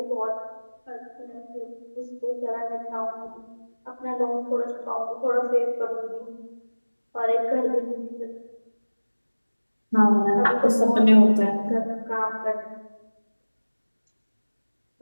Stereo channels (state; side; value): inverted; both; correlation -1.00